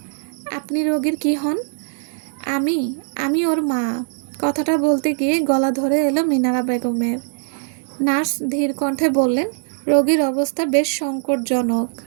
আপনি রোগীর কি হন? আমি ওর মা। কথাটা বলতে গিয়ে গলা ধরে এলো মিনারা বেগমের। নার্স ধীর কণ্ঠে বললেন, রোগীর অবস্থা বেশ সংকটজনক,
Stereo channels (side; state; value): left; silent; digital silence